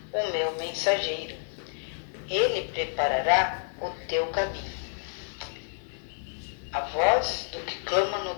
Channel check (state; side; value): silent; right; 58 dB below the other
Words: o meu mensageiro, ele preparará o teu caminho. A voz do que clama no